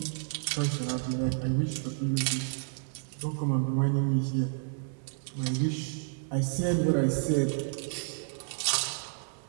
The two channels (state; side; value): silent; left; 57 dB below the other